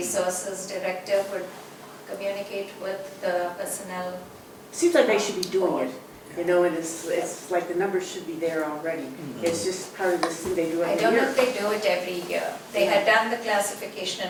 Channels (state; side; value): identical; both; correlation 1.00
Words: Director would communicate with the personnel. Seems like they should be doing it, you know, and it's like the numbers should be there already. It's just part of this thing they do I every don't know year. if they do it every year. They had done the classification